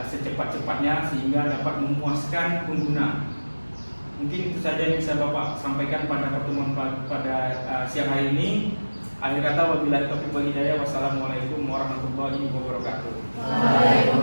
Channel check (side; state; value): both; inverted; correlation -1.00